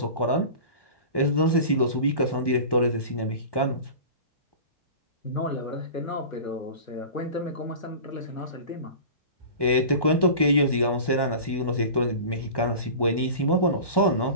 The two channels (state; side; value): late; right; 1.1 ms